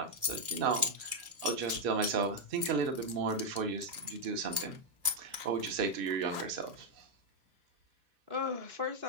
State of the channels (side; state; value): left; late; 2.6 ms